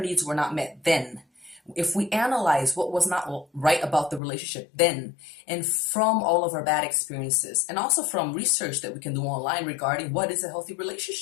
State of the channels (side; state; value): right; drops out; at 4.2 s